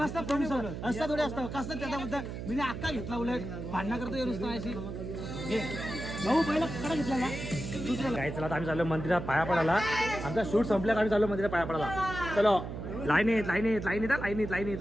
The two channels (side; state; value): right; noise; hum, 7 dB below the sound